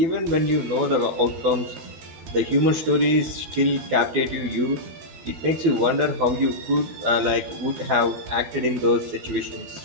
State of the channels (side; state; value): left; late; 13 ms